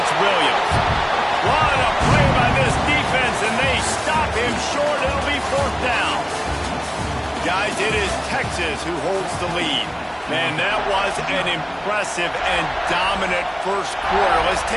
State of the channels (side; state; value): both; identical; correlation 1.00